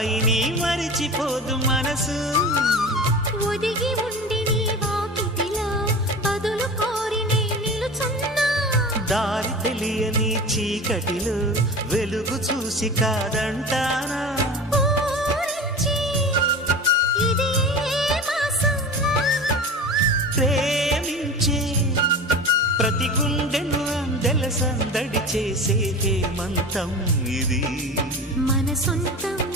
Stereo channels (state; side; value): normal; both; correlation 0.33